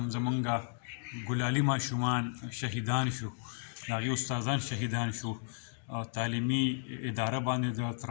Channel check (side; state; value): right; silent; digital silence